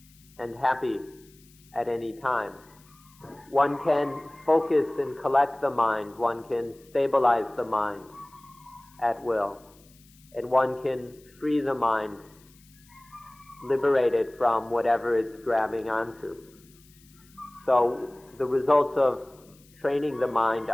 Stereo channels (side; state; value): left; noise; hiss, 28 dB below the sound